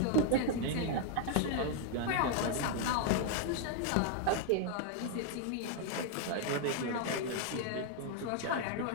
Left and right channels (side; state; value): both; different; correlation 0.00